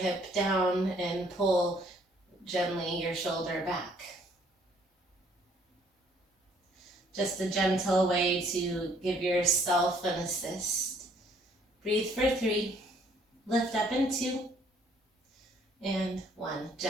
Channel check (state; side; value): normal; both; correlation 0.63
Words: down and pull gently your shoulder back. Just a gentle way to give yourself an assist. Breathe for 3, lift up in 2, and 1.